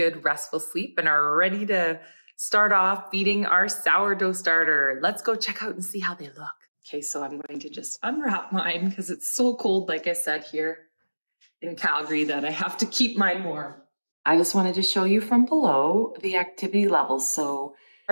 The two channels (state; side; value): inverted; both; correlation -1.00